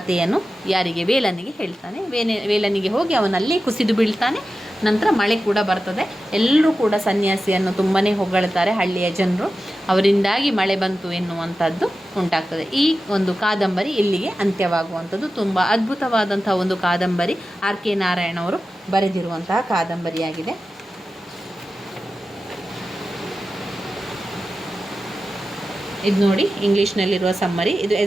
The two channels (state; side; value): normal; both; correlation 0.93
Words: ಯಾರಿಗೆ, ವೇಲನಿಗೆ ಹೇಳ್ತಾನೆ. ವೇಲನಿಗೆ ಹೋಗಿ ಅವನಲ್ಲೇ ಕುಸಿದು ಬೀಳ್ತಾನೆ. ನಂತರ ಮಳೆ ಕೂಡ ಬರ್ತದೆ. ಎಲ್ಲರೂ ಕೂಡ ಸನ್ಯಾಸಿಯನ್ನು ತುಂಬಾ ಹೊಗಳ್ತಾರೆ ಹಳ್ಳಿಯ ಜನರು. ಅವರಿಂದಾಗಿ ಮಳೆ ಬಂತು ಎನ್ನುವಂಥದ್ದು ಉಂಟಾಗ್ತದೆ. ಈ ಒಂದು ಕಾದಂಬರಿ ಇಲ್ಲಿಗೆ ಅಂತ್ಯವಾಗುವಂಥದ್ದು. ತುಂಬ ಅದ್ಭುತವಾದಂಥ ಒಂದು ಕಾದಂಬರಿ. ಆರ್ ಕೆ ನಾರಾಯಣ ಅವರು ಬರೆದಿರುವಂತಹ ಕಾದಂಬರಿಯಾಗಿದೆ. ಇದು ನೋಡಿ, ಇಂಗ್ಲೀಷ್ನಲ್ಲಿರುವ ಸಮ್ಮರಿ. ಇದು